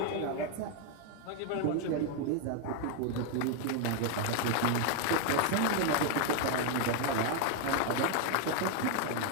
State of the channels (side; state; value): both; different; correlation 0.01